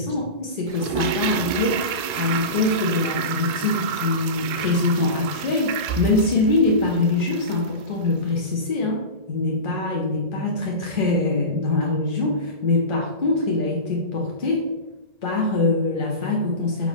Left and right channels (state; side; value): late; left; 2.5 ms